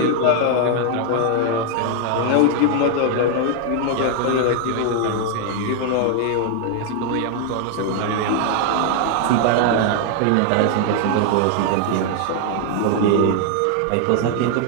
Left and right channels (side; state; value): both; different; correlation 0.00